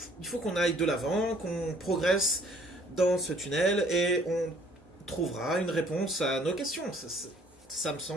il faut qu'on aille de l'avant, qu'on progresse dans ce tunnel et on trouvera une réponse à nos questions. Ça me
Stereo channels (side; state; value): both; normal; correlation 0.59